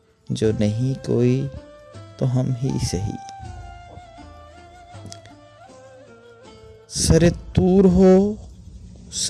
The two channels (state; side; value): identical; both; correlation 1.00